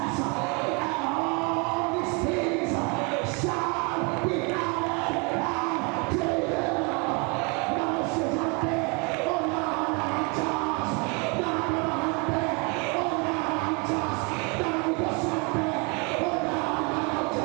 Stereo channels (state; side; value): quieter; left; 32.1 dB